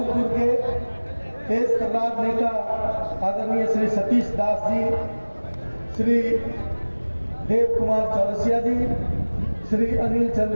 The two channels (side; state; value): both; inverted; correlation -1.00